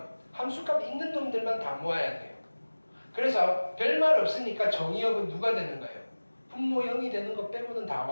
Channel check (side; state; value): both; inverted; correlation -1.00